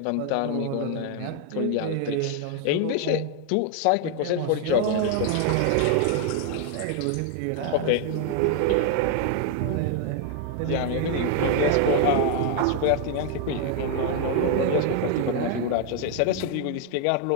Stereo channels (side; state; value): both; different; correlation 0.00